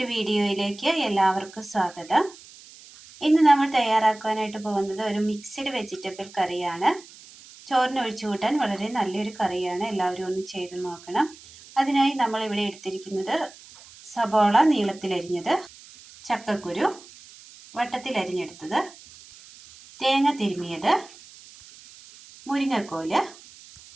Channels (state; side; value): noise; right; hiss, 21 dB below the sound